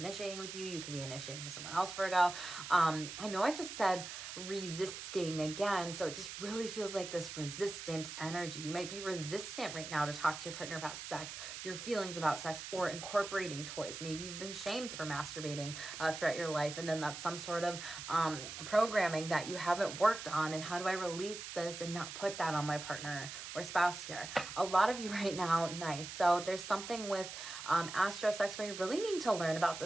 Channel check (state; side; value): noise; right; hiss, 9 dB below the sound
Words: with you. You could be initiating with someone else, Virgo. I know I just said resisting again, so it just really feels like this resistant energy. You might be resistant right now to talk to your partner about sex, your feelings about sex, or incorporating toys. Maybe you've been shamed for masturbating throughout your life, and then that's some sort of programming that you haven't worked on. And how do I release this and not put that on my partner or spouse here? A lot of you right now, nice. So there's something with astro sex where you really need to learn about